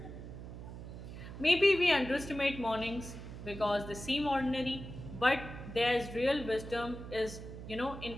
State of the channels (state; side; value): noise; right; hum, 11 dB below the sound